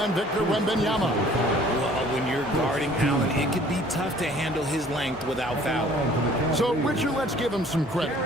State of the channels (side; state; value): both; normal; correlation 0.54